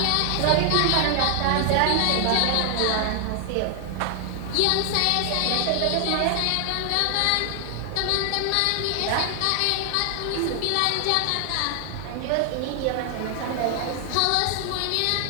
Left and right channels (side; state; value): both; different; correlation 0.00